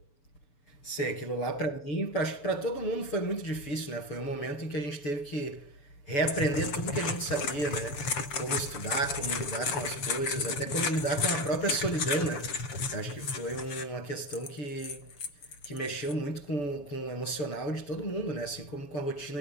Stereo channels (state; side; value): late; right; 6.9 ms